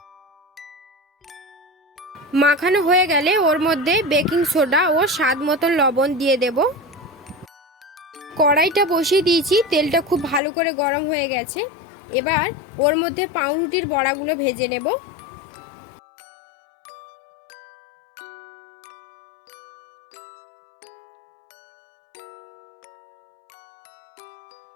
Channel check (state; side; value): drops out; right; at 10.4 s